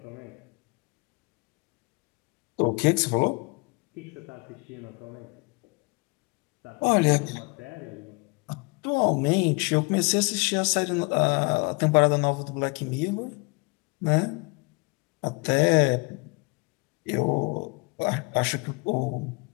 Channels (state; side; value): quieter; right; 29.6 dB